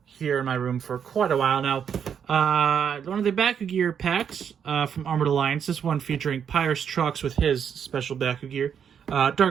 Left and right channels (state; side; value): quieter; left; 7.8 dB